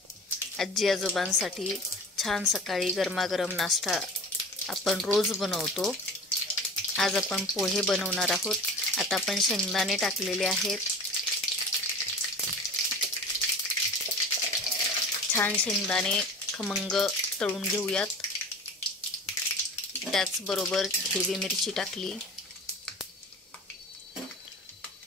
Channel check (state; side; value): normal; both; correlation 0.37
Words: आजी आजोबांसाठी छान सकाळी गरमागरम नाश्ता आपण रोज बनवतो. आज आपण पोहे बनवणार आहोत. आता आपण शेंगदाणे टाकलेले आहेत. छान शेंगदाणे खमंग तळून घेऊयात. त्याचबरोबर हिरवी मिरची टाकली.